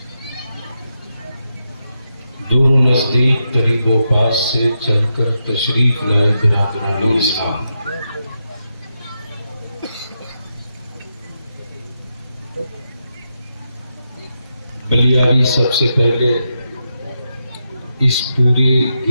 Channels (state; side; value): inverted; both; correlation -0.86